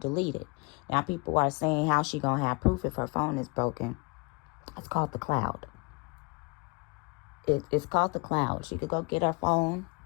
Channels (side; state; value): right; quieter; 28.7 dB